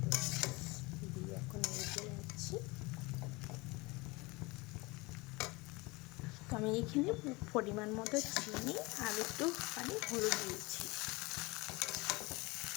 দিয়ে এখন রেখে নিচ্ছি। তো আমি এখানে পরিমাণ মতো চিনি আর একটু হলুদ দিয়েছি,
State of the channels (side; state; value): right; quieter; 24.6 dB